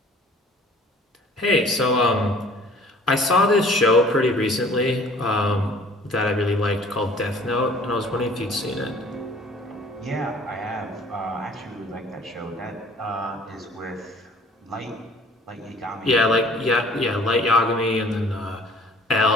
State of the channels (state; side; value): normal; both; correlation 0.53